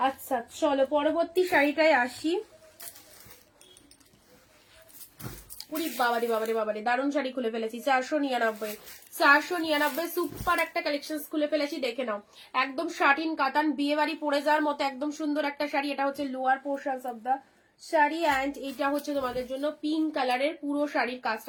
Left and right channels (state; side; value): identical; both; correlation 1.00